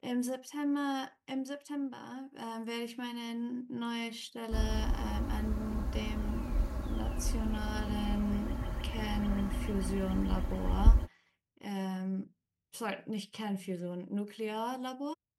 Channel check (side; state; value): both; identical; correlation 1.00